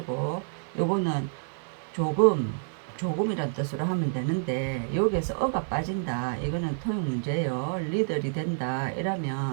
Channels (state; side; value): silent; left; 59 dB below the other